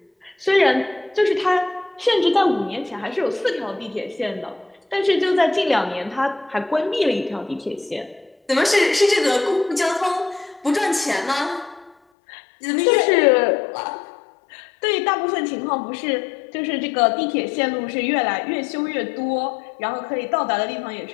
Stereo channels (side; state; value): right; drops out; at 12.0 s